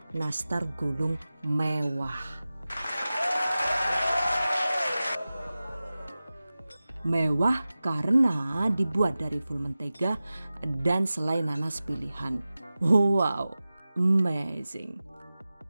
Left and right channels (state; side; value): inverted; both; correlation -0.96